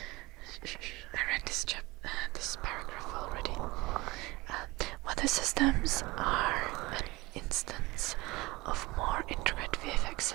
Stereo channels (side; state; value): left; quieter; 21.9 dB